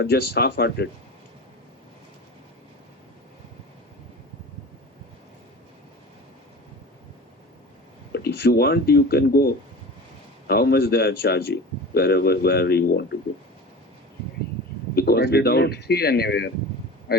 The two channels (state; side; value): normal; both; correlation 0.35